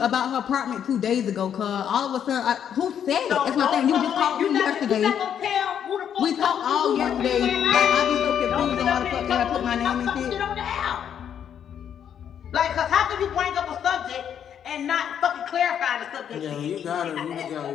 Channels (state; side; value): quieter; right; 8.8 dB